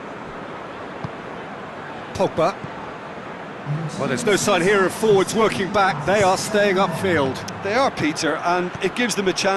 Pogba. Well, there's no sign here of forwards working back. They are staying upfield. They are, Peter, and it gives them a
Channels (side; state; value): both; identical; correlation 1.00